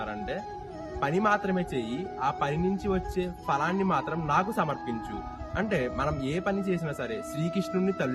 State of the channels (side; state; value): both; identical; correlation 1.00